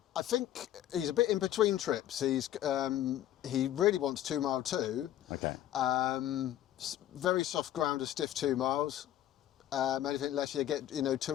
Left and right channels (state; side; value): quieter; right; 12.4 dB